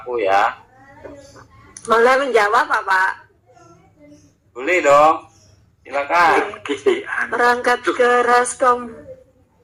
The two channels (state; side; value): identical; both; correlation 1.00